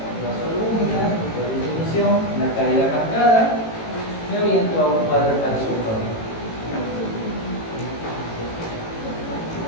albúmina, no disminución, una caída marcada, me oriento a un cuadro hepático crónico.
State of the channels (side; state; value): right; late; 18 ms